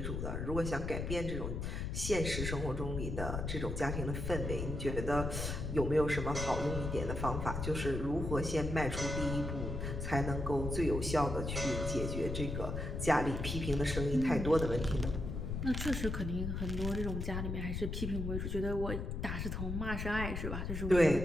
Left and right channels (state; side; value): noise; left; rumble, 3 dB below the sound